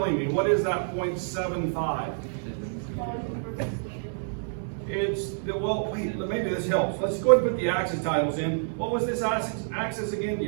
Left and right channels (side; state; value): left; silent; digital silence